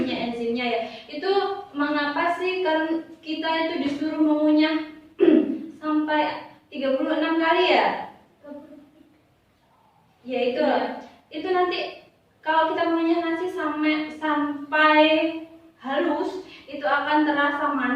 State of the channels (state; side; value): identical; both; correlation 1.00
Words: enzimnya ya. Itu mengapa sih kan kita itu disuruh mengunyah sampai 36 kali ya? Ya itu nanti kalau kita mengunyah nasi sampai halus itu akan terasa